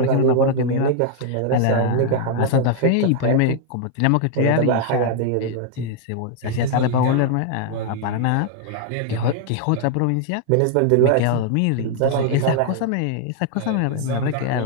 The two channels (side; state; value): both; different; correlation -0.01